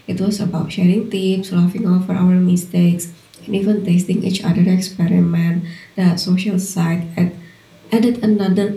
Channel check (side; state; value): both; identical; correlation 1.00